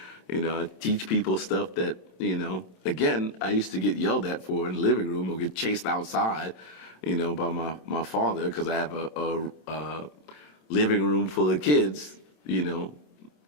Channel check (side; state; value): right; late; 27 ms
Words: I teach people stuff that, again, I used to get yelled at for in the living room or get chased outside, by my father, because I have a living room full of kids,